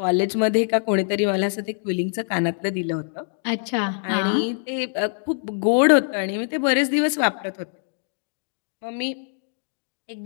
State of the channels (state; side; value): silent; right; digital silence